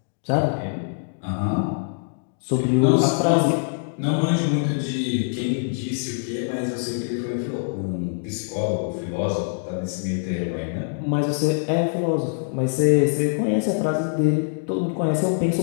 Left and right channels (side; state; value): right; silent; digital silence